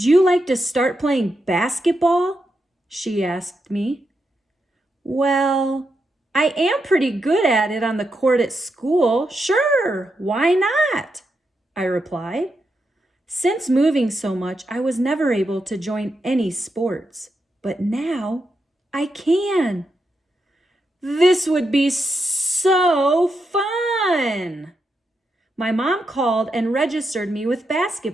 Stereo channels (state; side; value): normal; both; correlation 0.84